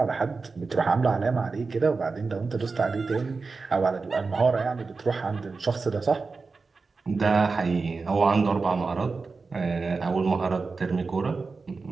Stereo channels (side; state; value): left; quieter; 4.3 dB